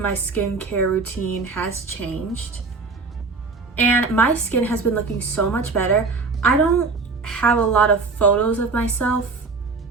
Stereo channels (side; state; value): left; quieter; 4.2 dB